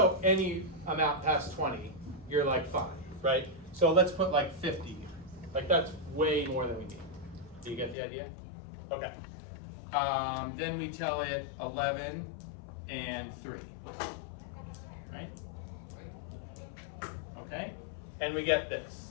any amount past 20, you're like fine, right? So let's put like 50 here. Like that's way more than we need. Do you get the idea? Okay. Then we tell it 11 and 3. Right? Okay? And we get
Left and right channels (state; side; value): drops out; right; at 8.0 s